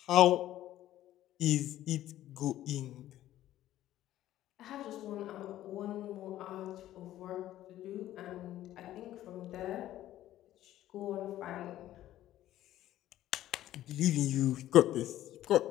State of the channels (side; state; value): right; quieter; 13.5 dB